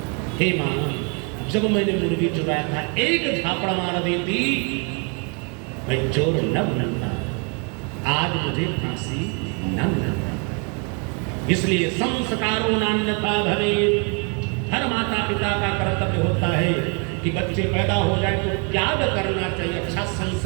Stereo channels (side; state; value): left; quieter; 36.2 dB